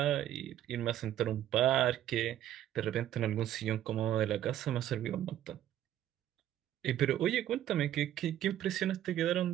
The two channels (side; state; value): left; quieter; 11.9 dB